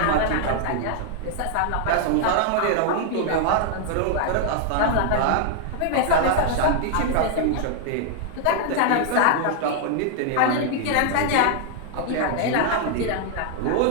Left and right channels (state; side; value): different; both; correlation 0.00